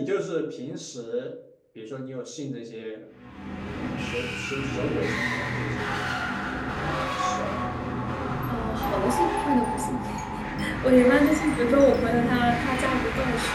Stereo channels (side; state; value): both; identical; correlation 1.00